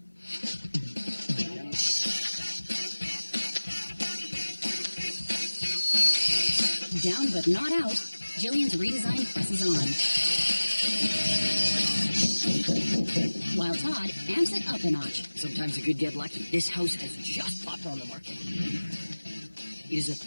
Down but not out, Jillian's redesign presses on. While Todd amps it up a notch. Sometimes you could get lucky. This house has just popped on the market. It is a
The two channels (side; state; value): both; inverted; correlation -1.00